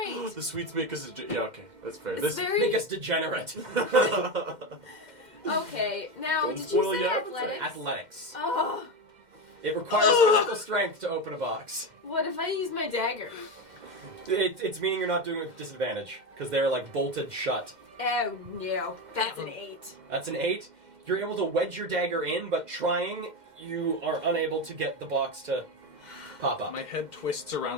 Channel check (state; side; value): late; left; 2.1 ms